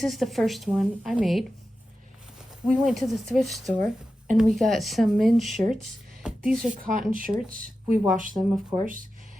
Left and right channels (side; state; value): both; normal; correlation 0.92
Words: is the first one I made. We went to the thrift store and we got some men's shirts. These are cotton shirts. We washed them, of course.